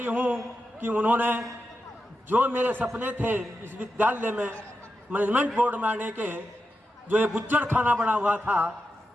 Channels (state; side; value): normal; both; correlation 0.89